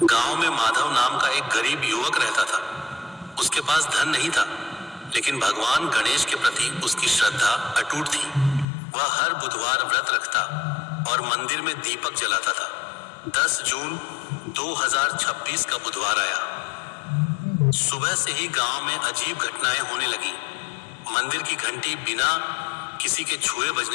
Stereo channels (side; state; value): right; drops out; at 8.7 s